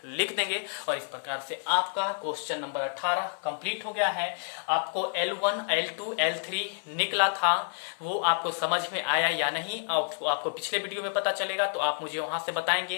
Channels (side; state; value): right; silent; 58 dB below the other